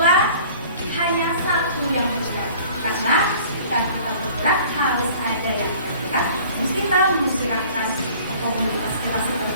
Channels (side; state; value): both; inverted; correlation -0.49